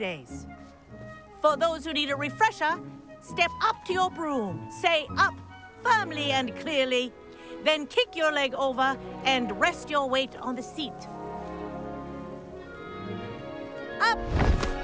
For those who need a refresher, step up to your broom, say up firmly and clearly, then kick your leg over and rest your weight on the seat. Up!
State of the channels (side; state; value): both; identical; correlation 1.00